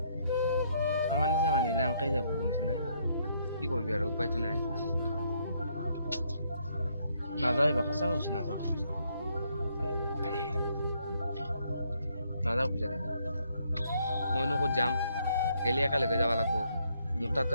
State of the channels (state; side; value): inverted; both; correlation -0.71